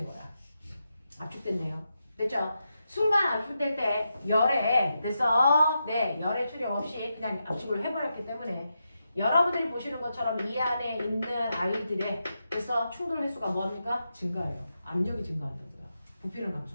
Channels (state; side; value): inverted; both; correlation -0.87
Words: 거야. 압축됐네요. 됐죠? 순간 압축될 때 열에, 됐어? 네, 열의 출입 없이 그냥 압축을 해버렸기 때문에 여러분들이 보시는 것처럼 이 안에 있는 아이들의 그래서 충돌 횟수가 뭐합니까? 증가해요. 압력이 증가한다고요. 부피는